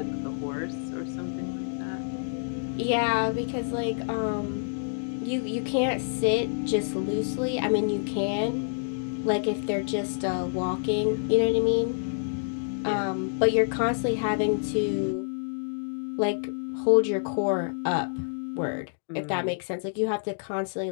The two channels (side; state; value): right; silent; digital silence